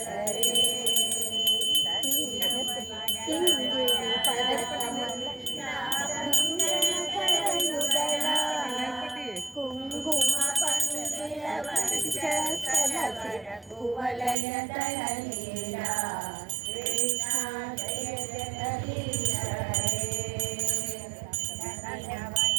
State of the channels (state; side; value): drops out; left; at 14.4 s